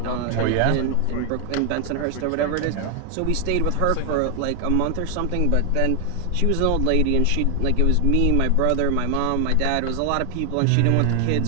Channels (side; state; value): both; different; correlation 0.00